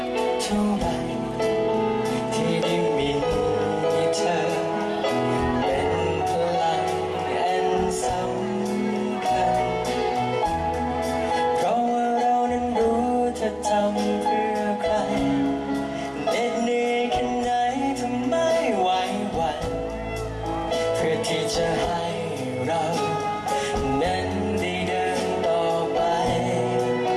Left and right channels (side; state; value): both; identical; correlation 1.00